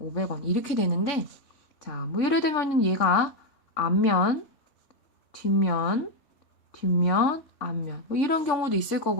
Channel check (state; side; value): late; right; 3.5 ms